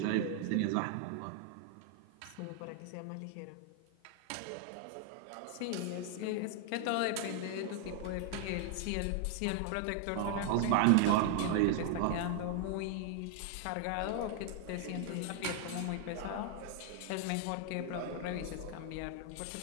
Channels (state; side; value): different; both; correlation 0.00